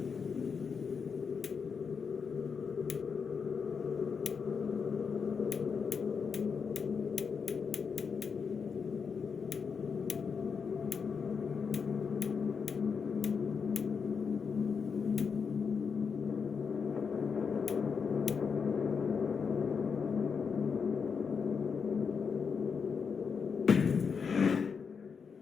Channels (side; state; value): right; quieter; 5.9 dB